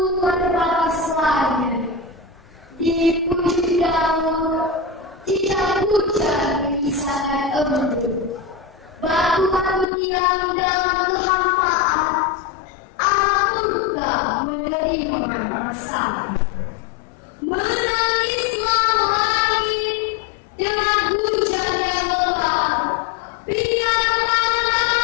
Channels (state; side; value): drops out; right; at 9.9 s